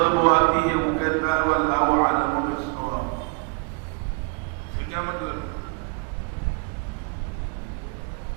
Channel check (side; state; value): left; quieter; 34.2 dB